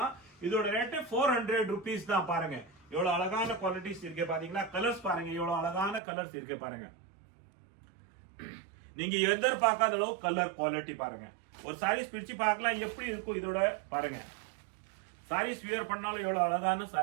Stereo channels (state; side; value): drops out; left; at 6.0 s